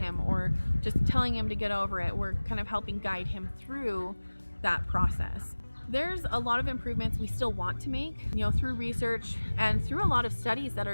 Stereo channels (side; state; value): both; inverted; correlation -1.00